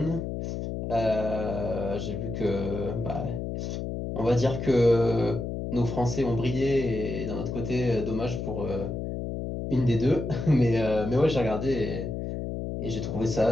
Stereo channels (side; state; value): left; noise; hum, 4 dB below the sound